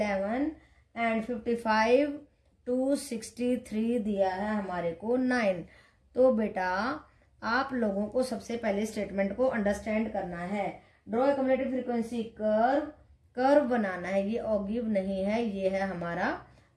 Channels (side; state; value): both; identical; correlation 1.00